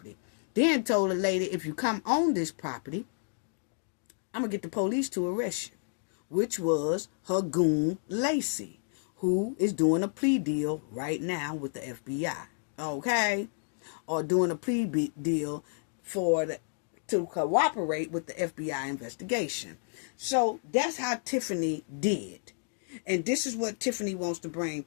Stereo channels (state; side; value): silent; right; digital silence